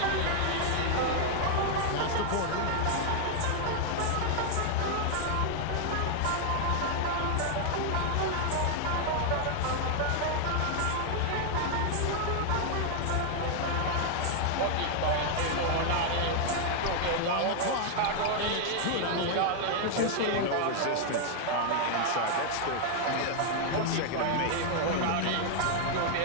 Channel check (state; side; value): different; both; correlation 0.00